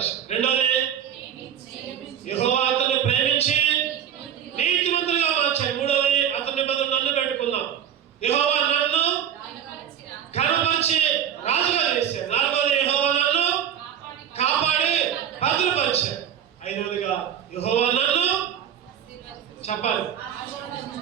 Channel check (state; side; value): quieter; left; 9.5 dB